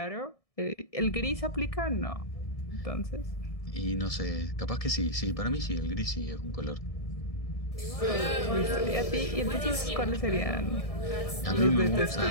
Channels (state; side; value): late; right; 1.6 ms